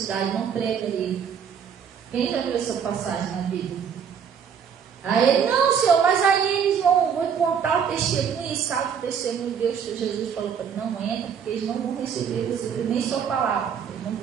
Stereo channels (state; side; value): quieter; left; 7.4 dB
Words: não prega ali. Quem já viu essa passagem na Bíblia? Aí ele, não, Senhor, mas aí eles vão contar o testemunho, e sabe o testemunho de Deus que Jesus falou para ele, não entra, porque eles não vão receber nem sua palavra, eles não